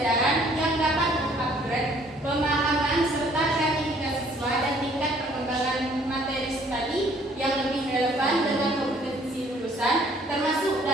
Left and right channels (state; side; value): normal; both; correlation 0.60